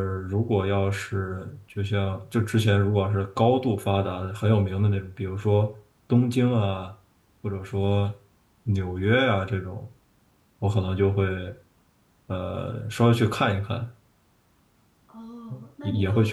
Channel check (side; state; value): both; identical; correlation 1.00